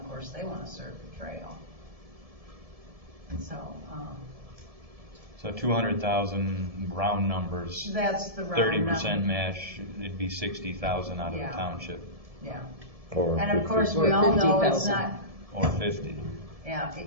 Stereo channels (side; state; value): left; late; 1.7 ms